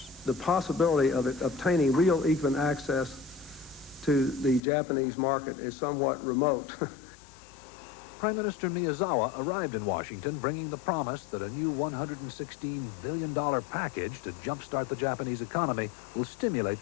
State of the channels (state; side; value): drops out; right; at 4.6 s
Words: The possibility of obtaining real even access to the Japanese market is somewhat remote. Prime Minister Miyazawa arrived in Washington bringing the promise that a new $116 billion package to jumpstart the Japanese economy will stimulate